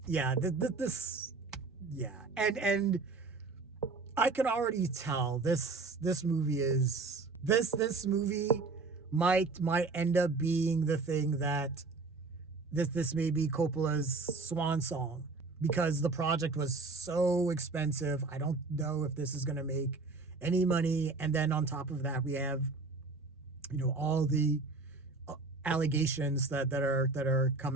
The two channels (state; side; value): quieter; left; 3.8 dB